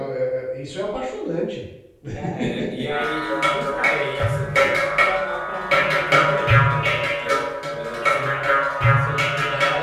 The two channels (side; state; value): both; identical; correlation 1.00